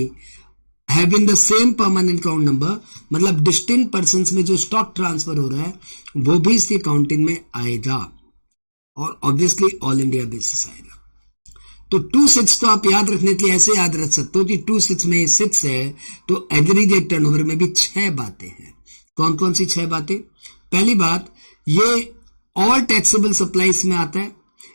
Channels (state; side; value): inverted; both; correlation -1.00